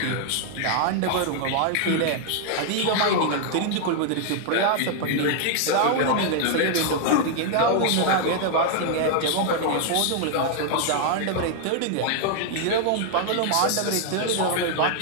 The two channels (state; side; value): different; both; correlation 0.00